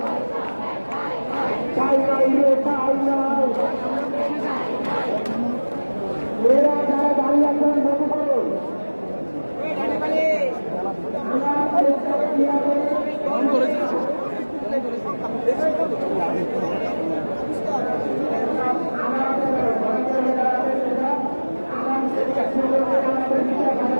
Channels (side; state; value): both; inverted; correlation -1.00